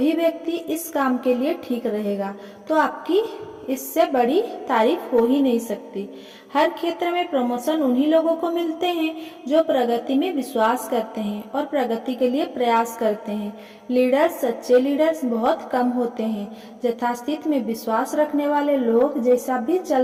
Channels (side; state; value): both; identical; correlation 1.00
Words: व्यक्ति इस काम के लिए ठीक रहेगा, तो आपकी इससे बड़ी तारीफ हो ही नहीं सकती। हर क्षेत्र में प्रमोशन उन्हीं लोगों को मिलते हैं जो प्रगति में विश्वास करते हैं और प्रगति के लिए प्रयास करते हैं। सच्चे लीडर्स बहुत कम होते हैं। यथास्थिति में विश्वास रखने वाले लोग जैसा भी